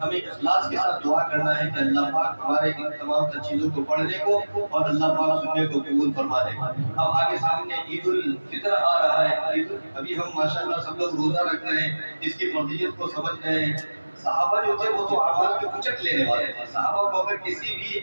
ہمیں اخلاص کے ساتھ دعا کرنا ہے کہ اللہ پاک ہمارے ان تمام تر چیزوں کو پڑھنے کو اور اللہ پاک سننے کو قبول فرما دے۔ اب آگے سامنے عید الفطر آ رہا ہے، ابھی ہم ماشاءاللہ سب لوگ روزہ رکھ رہے ہیں، اس کی فضیلت کو سمجھ رہے ہیں۔ صحابہ جو تھے وہ تو اعمال کے اچک لینے والے تھے، صحابہ کو اگر کسی بھی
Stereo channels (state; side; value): inverted; both; correlation -1.00